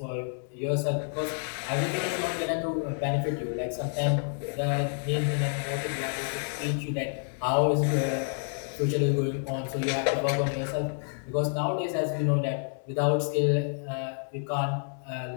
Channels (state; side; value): silent; right; 59 dB below the other